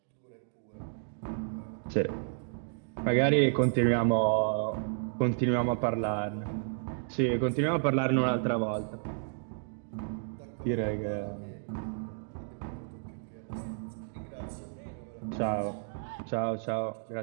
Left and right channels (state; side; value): silent; left; digital silence